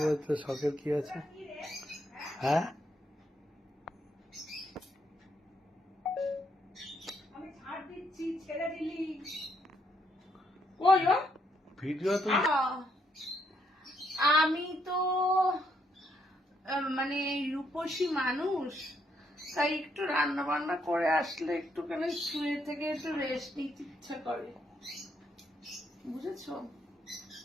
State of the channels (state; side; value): normal; both; correlation 0.74